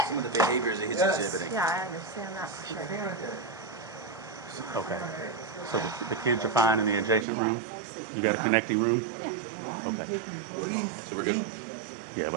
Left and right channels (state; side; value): drops out; left; at 7.2 s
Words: of the behaviors that he's exhibiting. Yeah, I understand that for sure. Okay. So the kids are fine in the adjacent room? You got a connecting room? Okay. So we're good? Yeah,